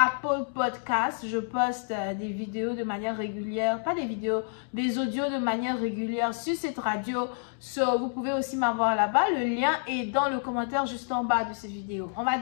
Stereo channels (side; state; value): right; silent; digital silence